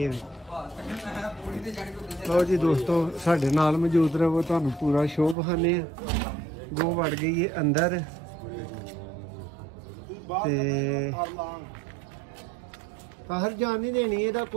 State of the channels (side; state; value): left; drops out; at 5.4 s